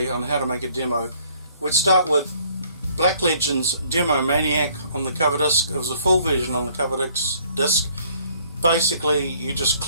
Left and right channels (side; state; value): both; inverted; correlation -0.61